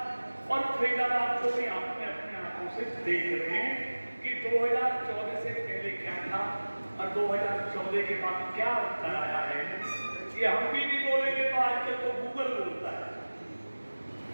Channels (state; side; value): inverted; both; correlation -1.00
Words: और फरीदाबाद को भी आपने अपने आंखों से देख रहे हैं कि 2014 से पहले क्या था और 2014 के बाद क्या अंतर आया है। ये हम भी नहीं बोलेंगे तो आजकल तो गूगल बोलता है।